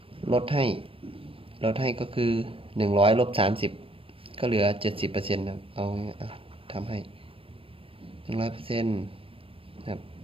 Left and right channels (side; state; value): left; late; 0.27 ms